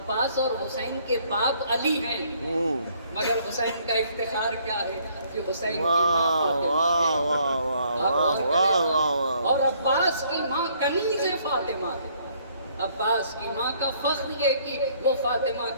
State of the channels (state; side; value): inverted; both; correlation -0.64